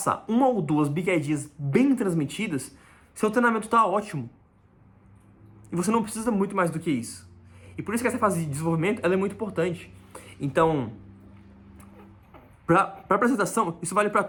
uma ou duas big ideas bem transmitidas, seu treinamento está ótimo. E você não precisa muito mais do que isso. E por isso que essa fase de desenvolvimento ela é muito importante. Então, para apresentação, isso vale para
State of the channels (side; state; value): both; identical; correlation 1.00